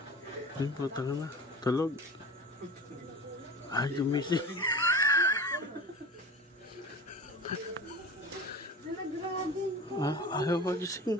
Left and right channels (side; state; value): both; normal; correlation 0.34